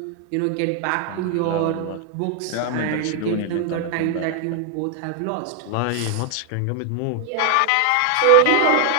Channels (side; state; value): both; different; correlation 0.00